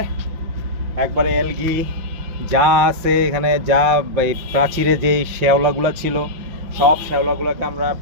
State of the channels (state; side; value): late; left; 5.9 ms